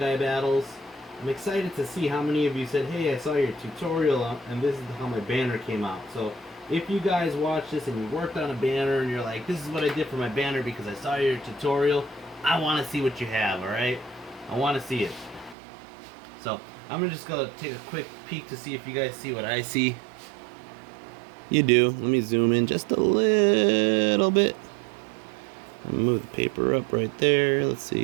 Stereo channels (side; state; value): left; drops out; at 15.6 s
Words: battles. I'm excited to see how many of you said, hey, I saw your tutorial and this is how my banner came out. So if you guys watch this and you worked on a banner and you're like, this is what I did for my banner because I saw your tutorial, I want to see what you have, alright? I want to see it. So I'm just going to take a quick peek to see if you guys see what I see. You do. Let me zoom in just a little bit. Move the paper up right there. Let's